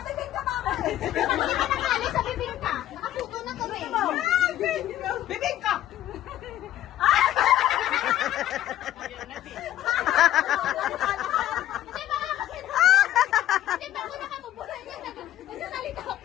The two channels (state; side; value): quieter; right; 12.9 dB